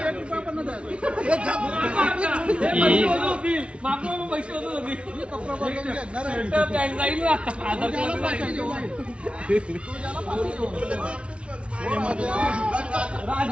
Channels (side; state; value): left; late; 0.060 ms